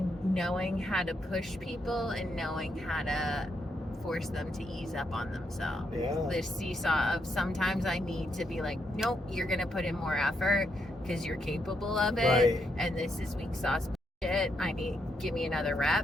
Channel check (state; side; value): normal; both; correlation 0.79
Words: knowing how to push people and knowing how to force them to ease up on themselves. Yeah. This seesaw of sometimes I need to be like, nope, you're going to put in more effort because you're capable of it. Right. And this is weak sauce shit. Give me another